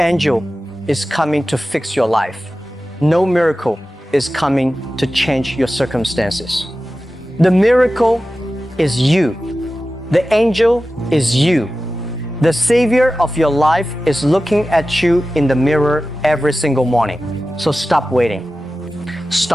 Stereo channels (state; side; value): normal; both; correlation 0.94